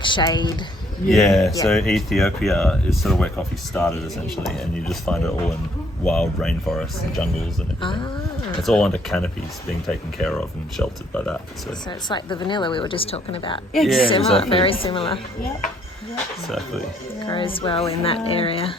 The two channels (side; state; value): both; normal; correlation 0.66